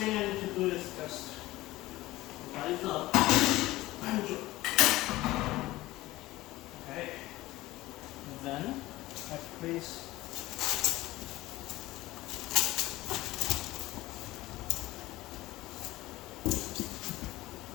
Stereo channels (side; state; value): right; quieter; 17.9 dB